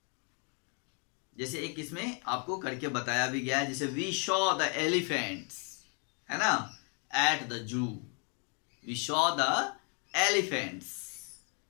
जैसे एक इसमें आपको करके बताया भी गया है, जैसे वी शॉ द एलिफेंट्स, है ना, at the zoo. We saw the elephants,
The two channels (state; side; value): quieter; right; 38.2 dB